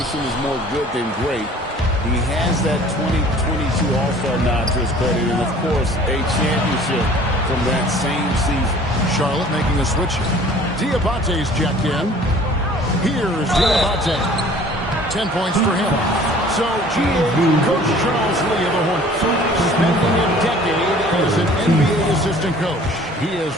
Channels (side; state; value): both; normal; correlation 0.50